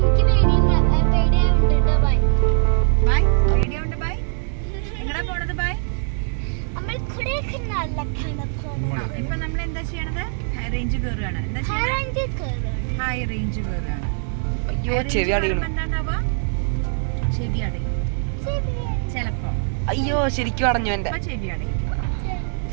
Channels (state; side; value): silent; left; digital silence